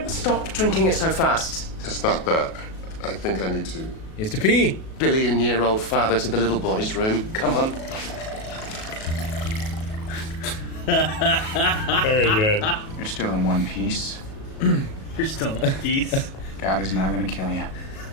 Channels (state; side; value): late; right; 37 ms